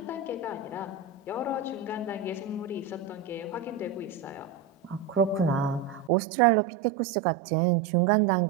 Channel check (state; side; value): drops out; left; at 6.1 s